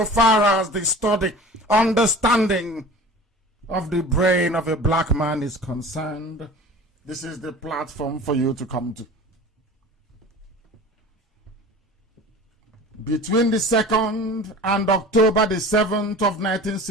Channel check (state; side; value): normal; both; correlation 0.40